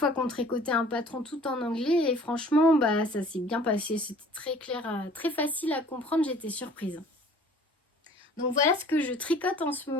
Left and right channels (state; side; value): normal; both; correlation 0.50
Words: qu'on tricotait un patron tout en anglais et franchement, ça s'est bien passé. C'était très clair, très facile à comprendre, j'étais surprise. Donc voilà ce que je tricote en ce